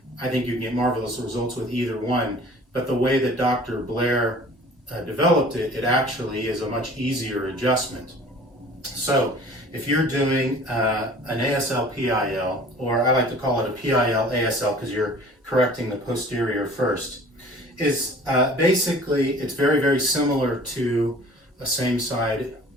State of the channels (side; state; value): both; normal; correlation 0.47